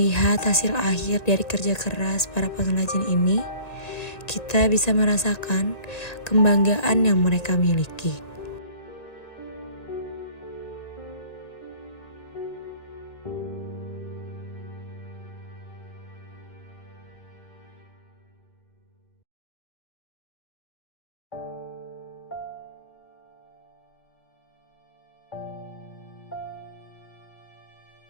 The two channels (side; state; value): right; late; 1.9 ms